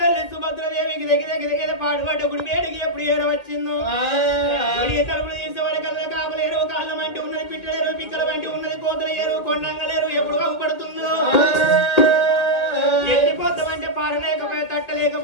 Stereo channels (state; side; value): late; right; 1.7 ms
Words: సుభద్రదేవికి దగ్గర పాడుపడ్డ గుడి వేడికి ఎప్పుడు ఏరవచ్చిందో తలుపులు తీసేవాడి కళ్ళ కాపులేరు కాళ్ళ వంటి ఉన్నది పిట్టలేరు పిక్కల వంటి ఉన్నది కోతలు ఏరు కొండంగలేరు ఎప్పుడు అవ్వబడుతుందో ఎత్తిపోతామంటే పారలేకపోయే